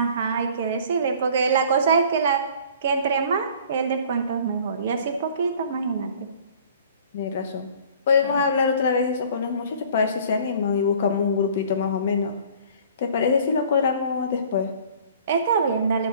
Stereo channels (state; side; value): inverted; both; correlation -0.50